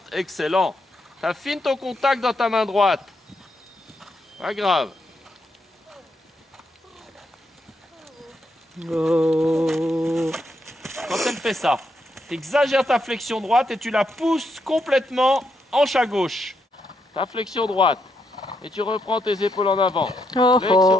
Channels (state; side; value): normal; both; correlation 0.79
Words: Excellent. Tu affines ton contact dans ta main droite. Pas grave. Oh. Quand elle fait ça, tu exagères ta flexion droite et tu la pousses complètement hanche à gauche. Ta flexion droite. Et tu reprends tes épaules en avant. Oh,